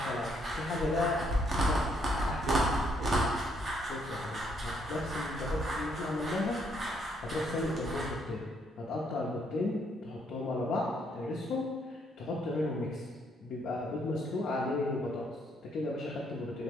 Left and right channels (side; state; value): both; normal; correlation 0.71